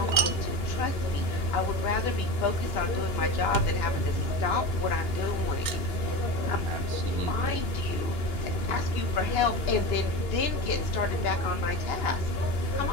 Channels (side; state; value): right; late; 2.9 ms